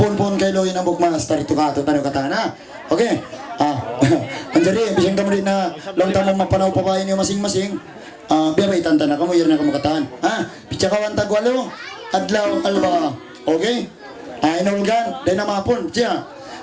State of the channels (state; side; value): identical; both; correlation 1.00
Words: kay Loy ng bukmas. Tarito ka, tanong katana. Okay. Anjari, bisang kamo rin na lang tamang mapanaw pa kayo niyo masing-masing. Biya ba itanta na kamo, yun na kamo kataan. Pitsa ka wantag walo. Adlaw, alba. Okay? Inulgan, dahil na mapon. Siya,